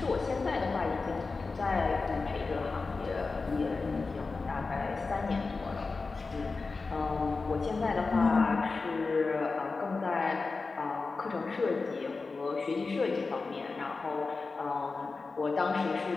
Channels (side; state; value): right; quieter; 4.1 dB